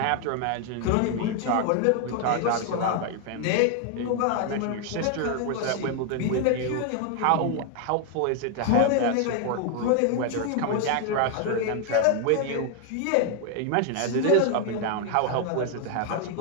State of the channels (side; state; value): both; different; correlation 0.00